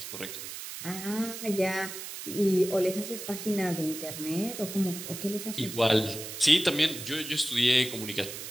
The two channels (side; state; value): right; noise; hiss, 9 dB below the sound